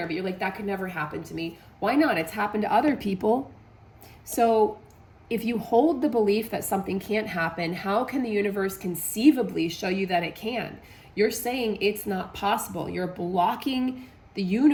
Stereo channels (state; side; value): identical; both; correlation 1.00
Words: but you're like, that could never happen to me. Why not? It's happened to other people. So if you hold the belief that something can't happen, how can the universe conceivably show you that it can? You're saying it's not possible. You're blocking the